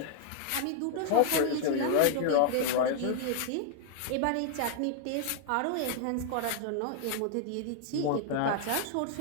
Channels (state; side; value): different; both; correlation -0.01